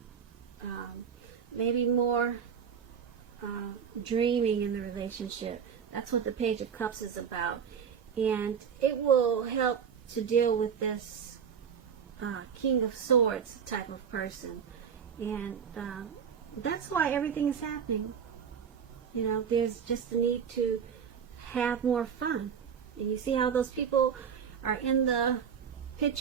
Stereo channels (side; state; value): left; quieter; 7.3 dB